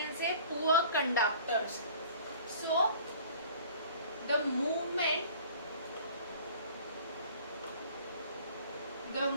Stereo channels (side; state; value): both; inverted; correlation -0.49